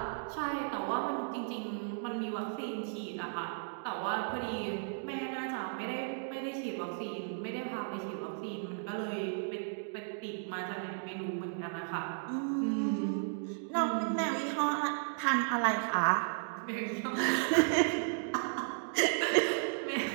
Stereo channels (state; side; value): silent; left; digital silence